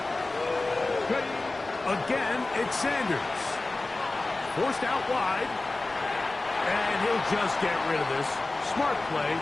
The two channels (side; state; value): right; quieter; 3.1 dB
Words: Again, it's Sanders. Forced out wide. And he'll just get rid of this. Smart play